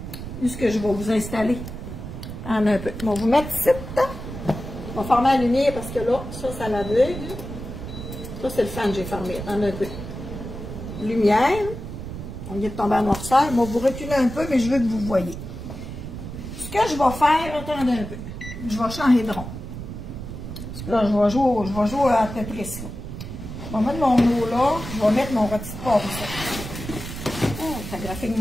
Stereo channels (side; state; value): right; noise; rumble, 9 dB below the sound